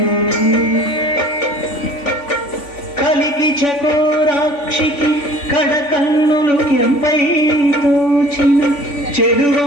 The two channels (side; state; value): right; late; 3.5 ms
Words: కలికి చకోరాక్షికి కడకన్నులు ఎంపై తోచిన